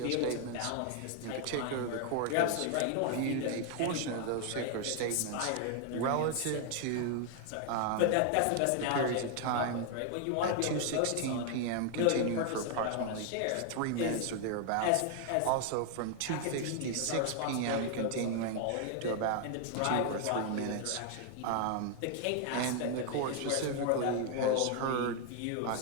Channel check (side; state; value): both; different; correlation 0.00